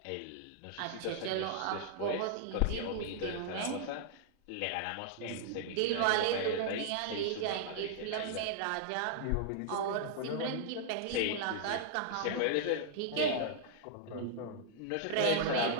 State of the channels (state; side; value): different; both; correlation -0.01